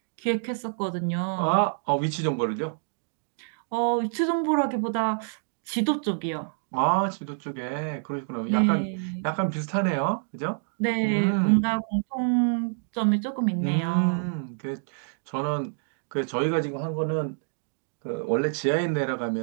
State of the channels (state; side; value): silent; left; digital silence